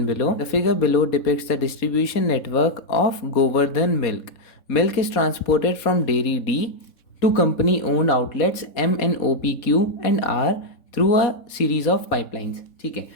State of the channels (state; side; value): late; right; 4.2 ms